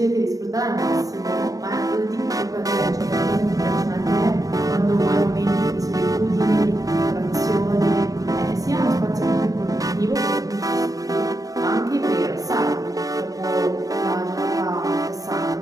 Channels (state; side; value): late; left; 0.17 ms